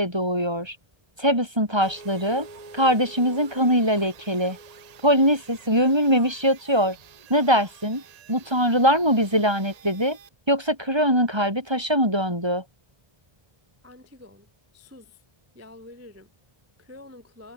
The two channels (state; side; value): late; left; 1.3 ms